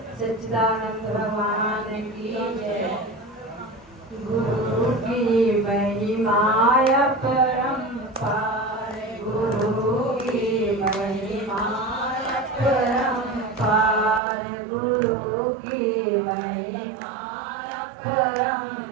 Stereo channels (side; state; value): left; drops out; at 14.2 s